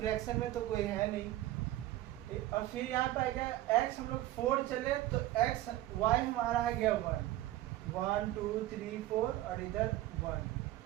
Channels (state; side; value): quieter; left; 15.0 dB